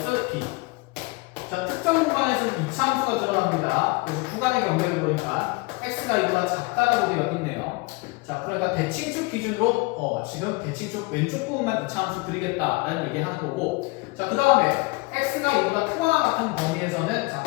b 자, 특정 구간에서는 이차함수가 드러납니다. 그래서 구간의 경계를 보니까 x가 이보다 작다라고 되어 있네요. 자, 그러니까 대칭축 기준으로 지금 대칭축 왼쪽 부분만 이차함수 그리겠다라는 얘기하는 거고, 자, 그 다음에 x가 이보다 크거나 같은 범위에서는 자,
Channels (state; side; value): quieter; right; 25.5 dB